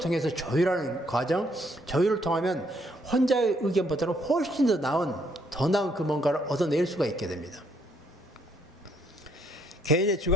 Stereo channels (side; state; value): both; normal; correlation 0.70